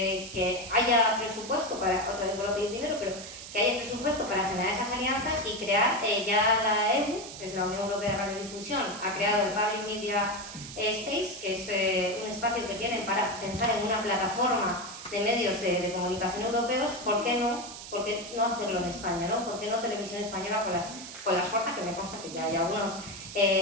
haya presupuesto para, otra vez por pedir dinero, pero que haya presupuesto para generar esas alianzas y crear ya la EU, que es la Unión Europea de Radiodifusión, ha creado el Public Media Space, que es un espacio que tienen para pensar en una plataforma de medios de comunicación europeos. ¿Por qué no hacerlo en España, ¿no? ¿Por qué no Televisión Española con las fuerzas, que me consta que ya hay algunas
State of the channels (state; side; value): noise; right; hiss, 12 dB below the sound